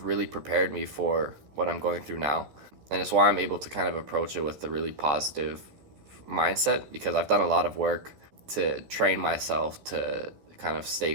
really prepared me for what I'm going through now. And it's why I'm able to kind of approach it with a really positive mindset, because I've done a lot of work to train myself to kind of stay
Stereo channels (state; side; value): late; left; 14 ms